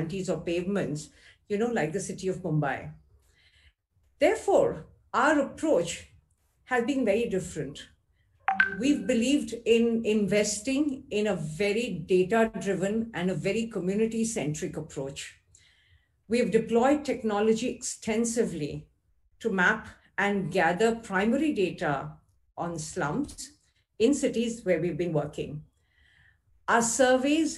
or pavements, like the city of Mumbai. Therefore, our approach has been very different. We've believed in investing in a very data-driven and a very community-centric approach. We have deployed technology extensively to map and gather primary data on slums in cities where we've been working. Our surveys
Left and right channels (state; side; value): identical; both; correlation 1.00